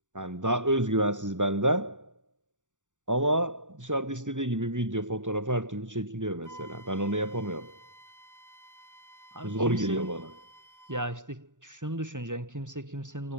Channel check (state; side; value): late; left; 0.86 ms